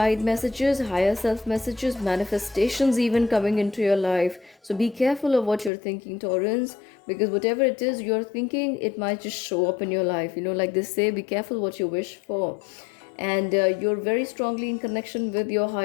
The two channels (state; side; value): drops out; right; at 5.7 s